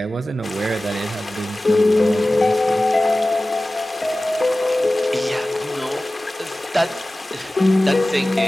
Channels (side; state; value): both; normal; correlation 0.97